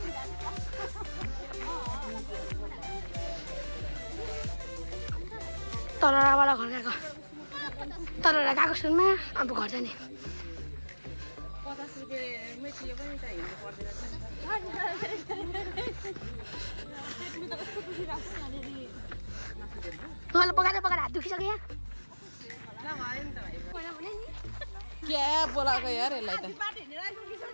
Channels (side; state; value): both; inverted; correlation -1.00